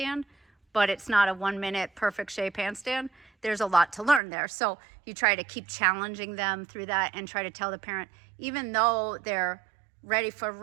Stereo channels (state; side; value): drops out; left; at 4.2 s